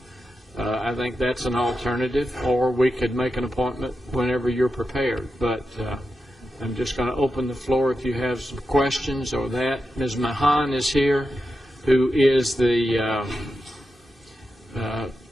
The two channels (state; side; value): normal; both; correlation 0.89